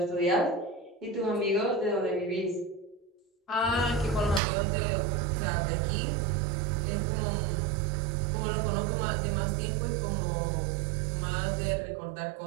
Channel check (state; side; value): drops out; left; at 4.4 s